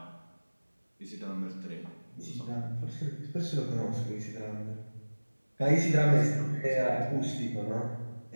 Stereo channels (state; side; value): inverted; both; correlation -1.00